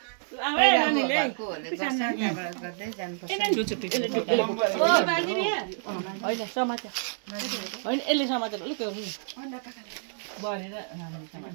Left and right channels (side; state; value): left; silent; 59 dB below the other